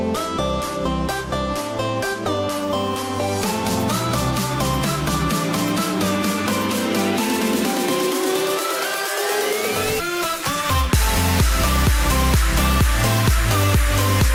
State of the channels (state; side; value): identical; both; correlation 1.00